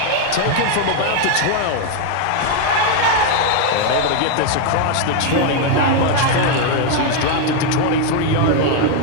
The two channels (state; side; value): different; both; correlation 0.00